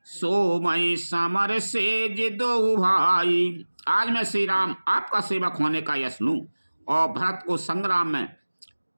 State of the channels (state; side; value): inverted; both; correlation -1.00